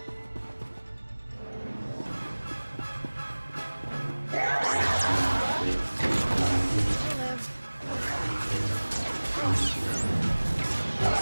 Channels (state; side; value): inverted; both; correlation -1.00